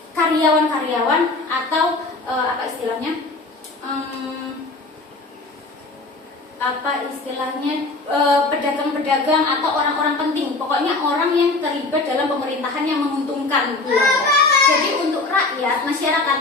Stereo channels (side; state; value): right; quieter; 3.3 dB